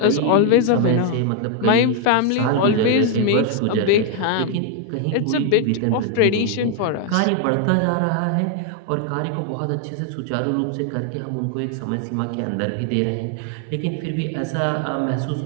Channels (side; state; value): both; different; correlation 0.00